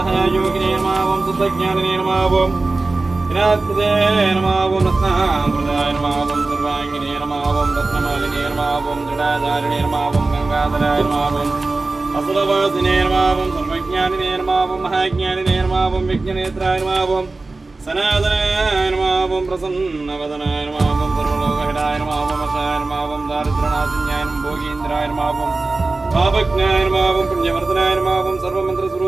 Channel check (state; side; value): quieter; left; 3.4 dB